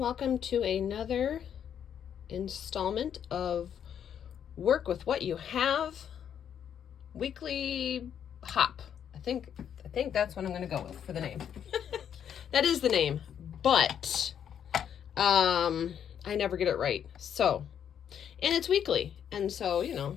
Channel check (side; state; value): right; quieter; 8.8 dB